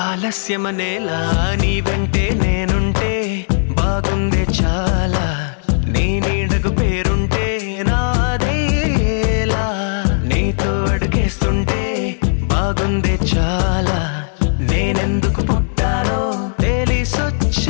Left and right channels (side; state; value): right; silent; 68 dB below the other